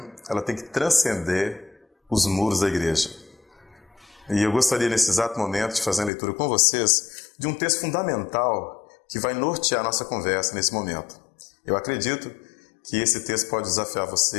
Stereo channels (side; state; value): right; drops out; at 6.1 s